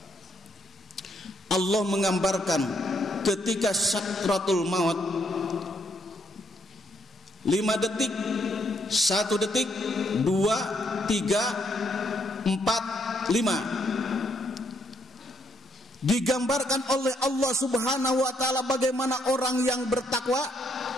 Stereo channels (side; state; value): both; normal; correlation 0.73